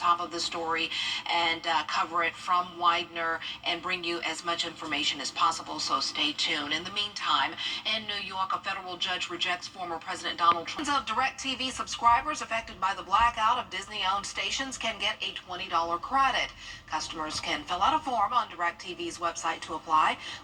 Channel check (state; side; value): identical; both; correlation 1.00